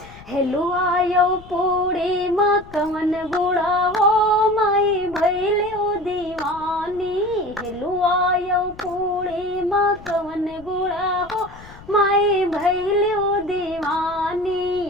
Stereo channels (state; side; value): noise; left; rumble, 20 dB below the sound